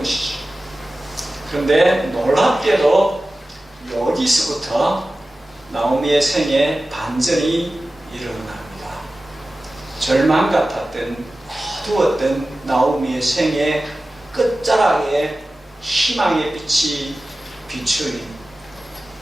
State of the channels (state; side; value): normal; both; correlation 0.95